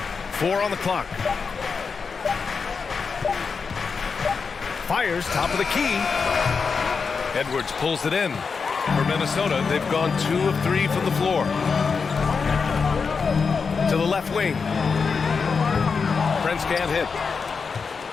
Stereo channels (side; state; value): right; quieter; 5.3 dB